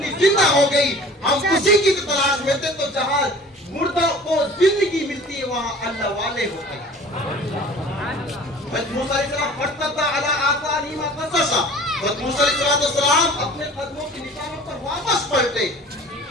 जिंदा हो गई, हम उसी की तलाश में थे। तो जहाँ मुर्दा को जिंदगी मिलती है वहाँ अल्लाह वाले होते हैं। हज़रत मूसा अलैहिस्सलाम फरतद्दा अला आसारिहिमा क़ससा, हज़रत मूसा अलैहिस्सलाम अपने कदमों के निशानों पर वापस पलटे।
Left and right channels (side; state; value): both; normal; correlation 0.45